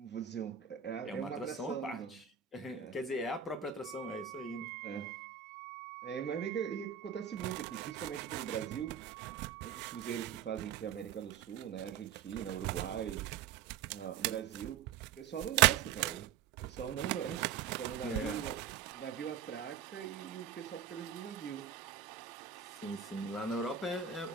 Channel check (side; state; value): left; quieter; 8.5 dB